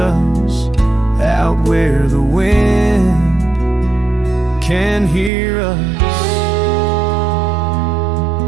out where the wind can hear us.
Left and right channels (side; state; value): left; drops out; at 5.3 s